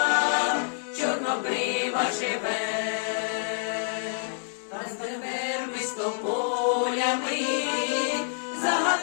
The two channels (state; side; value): silent; right; digital silence